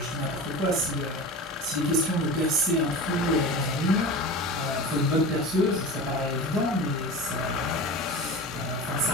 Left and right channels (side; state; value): both; normal; correlation 0.31